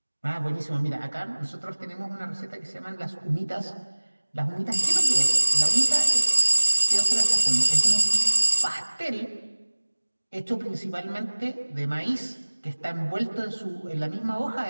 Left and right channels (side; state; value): both; inverted; correlation -1.00